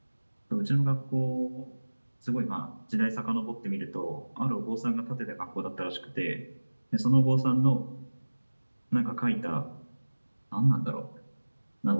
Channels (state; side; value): inverted; both; correlation -1.00